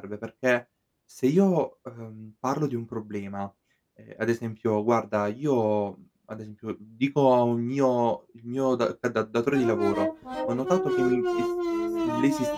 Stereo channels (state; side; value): identical; both; correlation 1.00